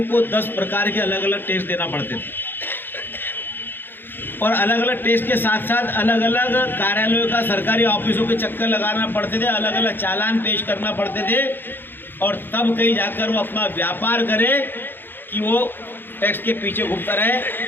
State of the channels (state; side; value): late; right; 0.098 ms